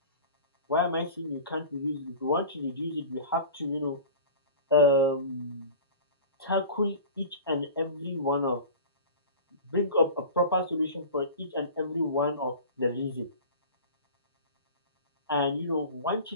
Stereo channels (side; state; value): both; inverted; correlation -0.36